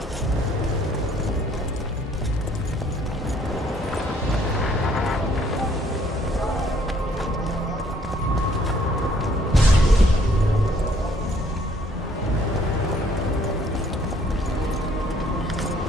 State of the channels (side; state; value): both; normal; correlation 0.63